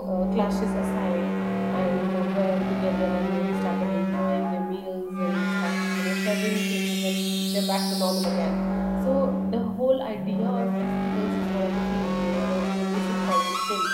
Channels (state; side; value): identical; both; correlation 1.00